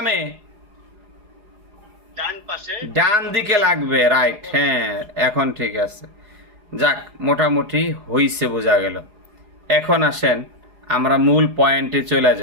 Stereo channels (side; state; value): left; late; 4.8 ms